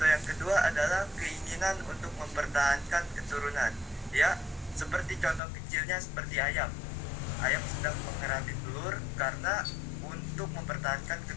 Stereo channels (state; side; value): drops out; right; at 5.4 s